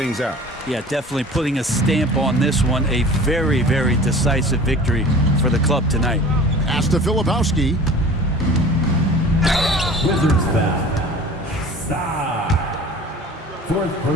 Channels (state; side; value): normal; both; correlation 0.42